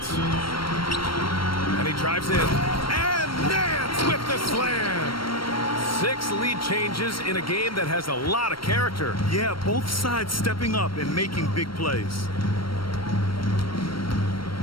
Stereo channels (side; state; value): right; late; 0.73 ms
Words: And he drives in. And Nance with the slam. 6 lead changes in a game that has a lot of character. Yeah, both sides stepping up and making big plays.